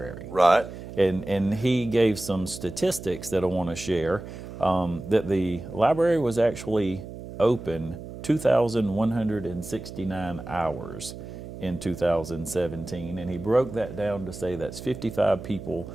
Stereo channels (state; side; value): noise; right; hum, 12 dB below the sound